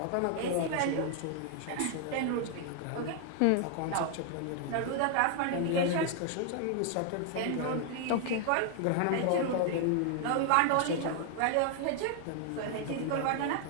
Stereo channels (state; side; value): different; both; correlation 0.00